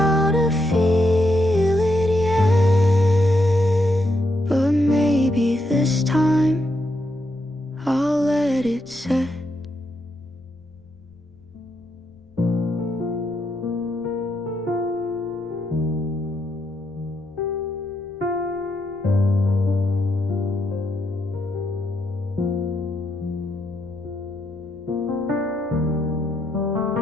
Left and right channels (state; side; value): noise; left; rumble, 29 dB below the sound